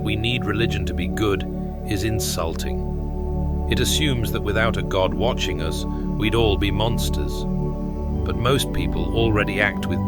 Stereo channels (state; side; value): identical; both; correlation 1.00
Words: we need religion to be good is insulting. It assumes that without a God watching us, we'd all be monsters. But most people already act with